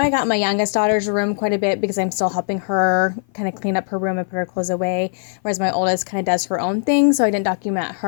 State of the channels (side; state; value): right; silent; 56 dB below the other